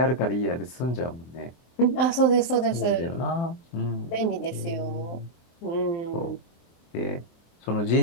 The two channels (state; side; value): late; right; 23 ms